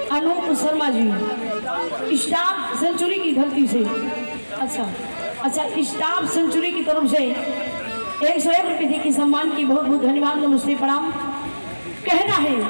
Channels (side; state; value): both; inverted; correlation -1.00